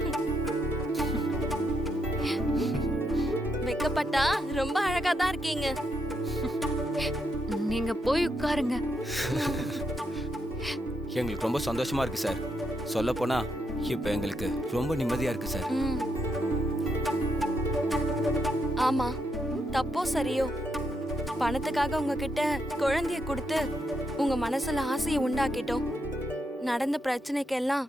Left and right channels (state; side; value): normal; both; correlation 0.79